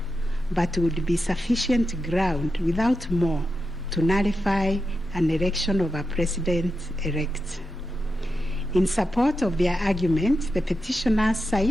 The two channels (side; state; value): both; normal; correlation 0.88